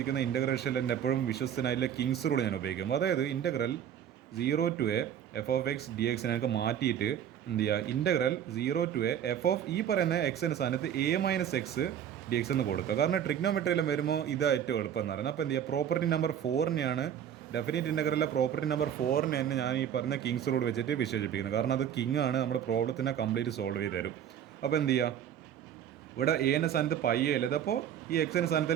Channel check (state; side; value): quieter; left; 9.5 dB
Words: ഇൻ്റഗ്രേഷനിൽ എൻ്റെ എപ്പോഴും വിശ്വസനായിട്ടുള്ള കിങ്സ് റൂൾ ഞാൻ ഉപയോഗിക്കും. അതായത് integral 0 to a f of x d എക്സിനെ എനിക്ക് മാറ്റിയിട്ട് എന്ത് ചെയ്യുക, integral 0 to a f of ഈ പറയുന്ന എക്സിൻ്റെ സ്ഥാനത്ത് a - x dx എന്ന് കൊടുക്കുക. കാരണം ട്രിഗ്നോമെട്രിയിലും വരുമ്പോൾ ഇതാ ഏറ്റവും എളുപ്പം എന്ന് പറയുന്നത്. അപ്പോൾ എന്ത് ചെയ്യുക, പ്രോപ്പർട്ടി നമ്പർ 4നെയാണ് ഡെഫിനിറ്റ് ഇൻ്റഗ്രലിലെ പ്രോപ്പർട്ടി നമ്പർ 4 തന്നെ ഞാൻ ഈ പറഞ്ഞ കിങ്സ് റൂൾ വെച്ചിട്ട് വിശേഷിപ്പിക്കുന്നത്. കാരണം അത് കിങ് ആണ്, നമ്മുടെ പ്രോബ്ലത്തിനെ കംപ്ലീറ്റ് സോൾവ് ചെയ്ത് തരും. അപ്പോൾ എന്ത് ചെയ്യുക, ഇവിടെ എന്റെ സ്ഥാനത്ത് പൈ അല്ലത്, അപ്പോൾ ഈ എക്സിൻ്റെ